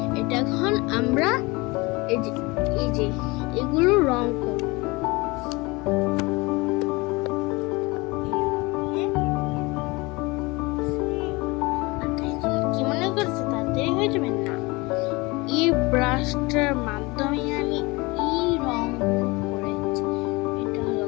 এটা এখন আমরা এই যে এগুলো রং করব। কি মনে করছো তাড়াতাড়ি হয়ে যাবে না? এই ব্রাশটার মাধ্যমে আমি এই রং করেছি। এটা হলো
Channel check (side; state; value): right; quieter; 24.4 dB